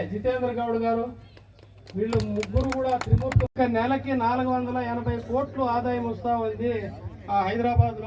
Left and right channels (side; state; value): both; identical; correlation 1.00